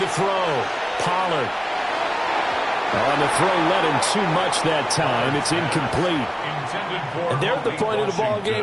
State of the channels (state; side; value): identical; both; correlation 1.00